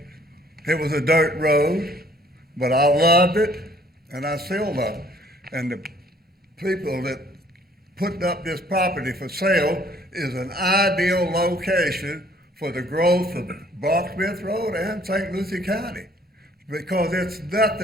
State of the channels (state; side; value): normal; both; correlation 0.59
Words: It was a dirt road, but I loved it, and I still love it. And the people that put up this property for sale is an ideal location for the growth of Brocksmith Road and St. Lucie County. Because it's